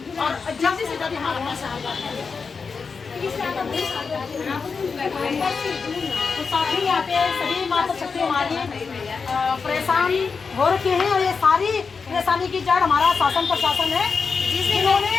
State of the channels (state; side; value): quieter; right; 5.2 dB